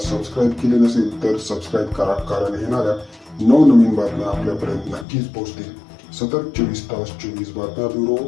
केले नसेल तर सबस्क्राईब करा, कारण येणाऱ्या नवनवीन बातम्या आपल्यापर्यंत नक्कीच पोहोचतील। सतत 24 तास 24 बातम्या ब्युरो,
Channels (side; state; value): right; drops out; at 5.1 s